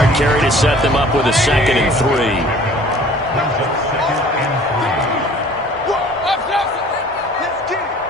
carry to set them up with a 2nd and 3.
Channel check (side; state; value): both; normal; correlation 0.50